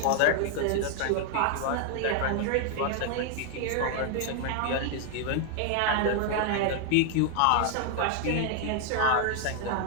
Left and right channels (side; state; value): both; different; correlation 0.00